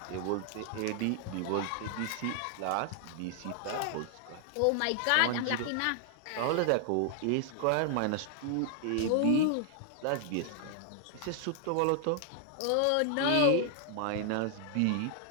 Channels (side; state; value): both; different; correlation 0.00